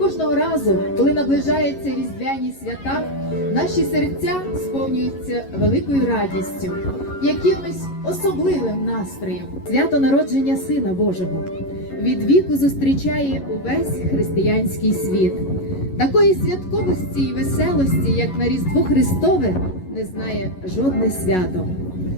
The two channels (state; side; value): late; right; 11 ms